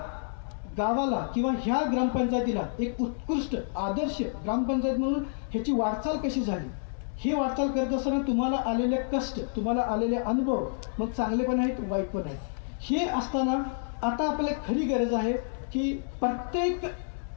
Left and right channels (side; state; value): right; silent; digital silence